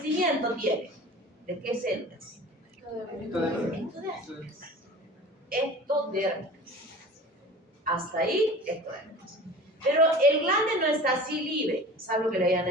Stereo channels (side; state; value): both; normal; correlation 0.39